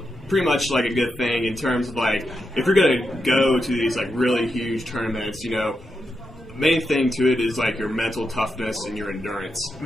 Pretty much like a good thing in terms of if you're going to go to these really huge tournaments, main thing to it is your mental toughness and your endurance.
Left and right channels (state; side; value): normal; both; correlation 0.86